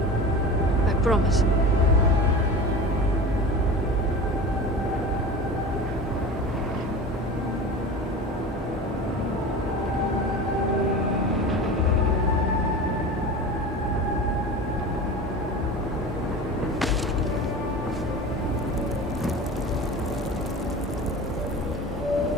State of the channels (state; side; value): normal; both; correlation 0.33